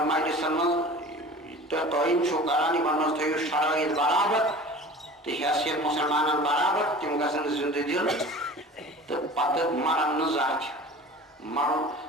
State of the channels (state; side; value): normal; both; correlation 0.40